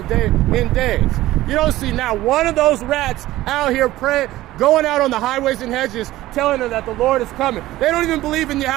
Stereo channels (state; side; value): quieter; left; 16.1 dB